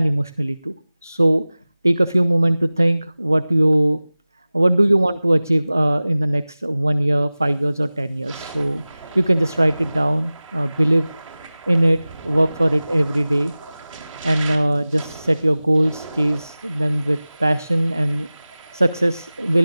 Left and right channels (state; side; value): inverted; both; correlation -0.98